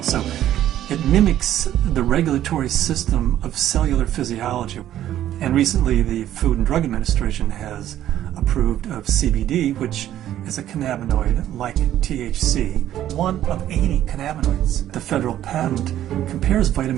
So it mimics the regulatory system of cellular physiology. And recently the Food and Drug Administration has approved of CBD, which is a cannabinoid like THC, one of 80 cannabinoids. The federal patent compares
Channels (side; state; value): left; quieter; 12.1 dB